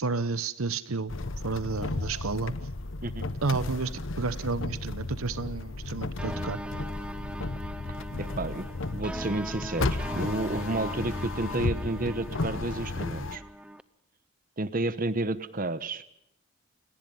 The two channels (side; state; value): both; normal; correlation 0.49